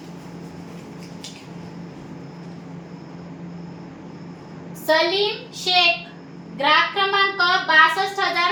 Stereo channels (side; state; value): both; identical; correlation 1.00